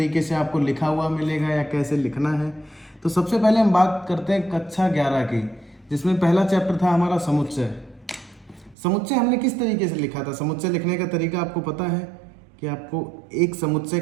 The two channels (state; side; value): drops out; left; at 8.8 s